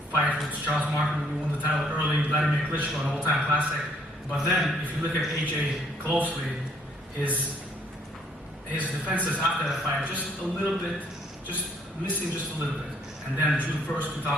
fight with Charles Martin, who won the title early, Vladimir Klitschko, an all-time classic. But then, if you look at AJ closely, his defenses after that fight, just a little bit, just missing just a little bit. And then June 1st,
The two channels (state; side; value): normal; both; correlation 0.65